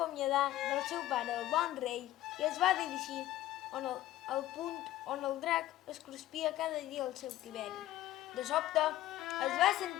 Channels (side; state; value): right; quieter; 14.7 dB